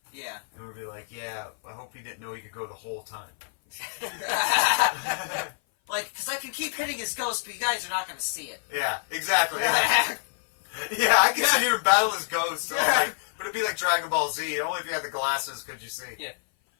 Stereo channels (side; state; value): right; silent; 56 dB below the other